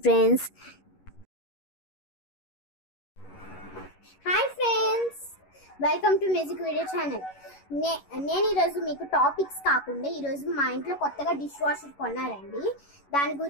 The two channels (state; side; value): late; right; 11 ms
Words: friends. Hi friends, welcome to music video channel. నేను ఈరోజు మీకు టాపిక్స్ కాకుండా ఈరోజు మా ఇంట్లో కొత్తగా డిష్ వాషర్ కొన్నారండి. దాని